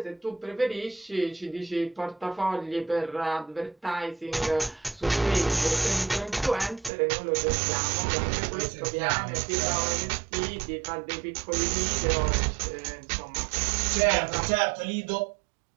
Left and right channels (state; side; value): drops out; left; at 6.9 s